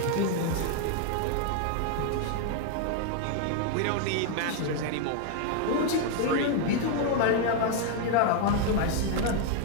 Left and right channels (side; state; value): both; different; correlation 0.00